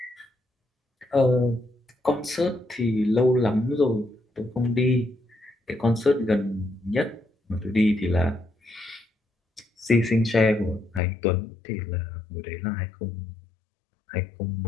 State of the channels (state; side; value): drops out; right; at 11.0 s